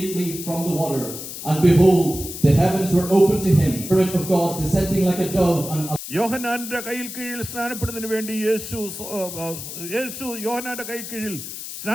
from the water, and behold, the heavens were opened to him, the Spirit of God descending like a dove. And യോഹന്നാന്റെ കയ്യിൽ കീഴിൽ സ്നാനപ്പെടുന്നതിന് വേണ്ടി യേശു യോഹന്നാന്റെ കയ്യിൽ കീഴിൽ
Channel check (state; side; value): noise; left; hiss, 9 dB below the sound